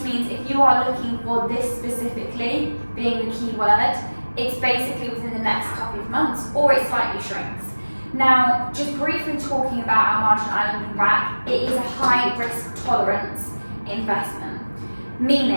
means if you are looking for this specifically, being the key word, it's basically within the next couple of months, or it slightly shrinks. Now, just briefly talking about Al Marjan Island and RAK, it is a high risk tolerance investment,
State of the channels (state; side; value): inverted; both; correlation -1.00